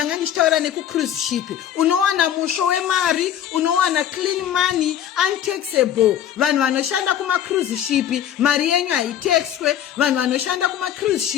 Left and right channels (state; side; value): quieter; right; 10.2 dB